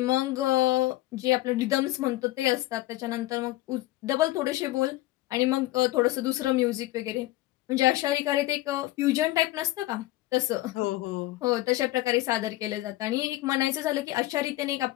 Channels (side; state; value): right; quieter; 17.3 dB